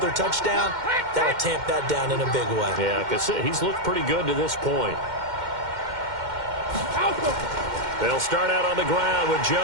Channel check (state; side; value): late; left; 2.1 ms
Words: touchdown, that'll tamp that down in a big way. Yeah, because he's looked pretty good to this point. They'll start out on the ground with